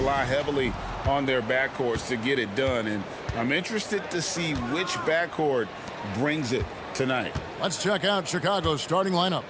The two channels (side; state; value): both; identical; correlation 1.00